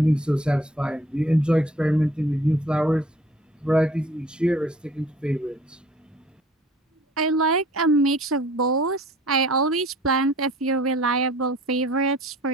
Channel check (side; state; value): both; normal; correlation 0.52